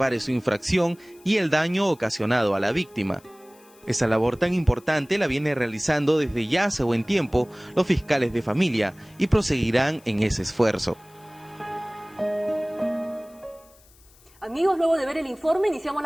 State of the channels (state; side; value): noise; left; hiss, 28 dB below the sound